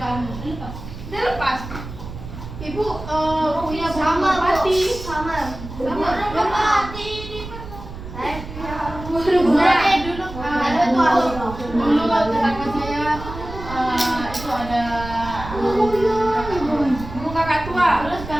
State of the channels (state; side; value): noise; right; rumble, 11 dB below the sound